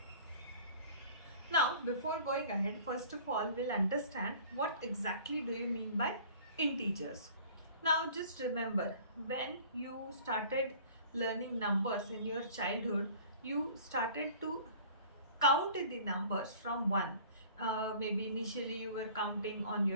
Now, before going ahead, first of all, we'll understand what exactly do you mean by integers. Now, just remember, when you started learning numbers in your childhood, you started to count the numbers from 1. Maybe initially you were counting on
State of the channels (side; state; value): both; inverted; correlation -0.48